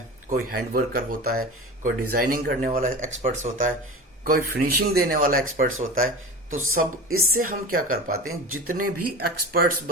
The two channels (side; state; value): both; normal; correlation 0.32